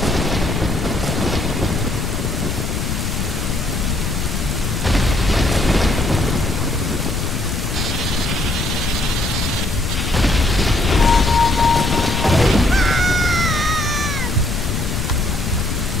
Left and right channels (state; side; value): noise; left; rumble, 2 dB below the sound